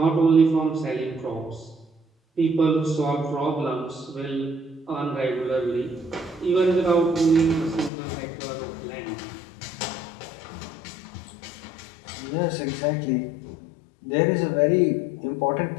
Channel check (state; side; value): drops out; right; at 7.9 s